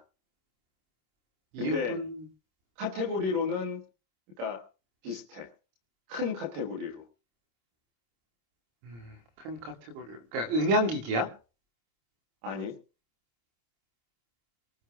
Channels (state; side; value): late; left; 26 ms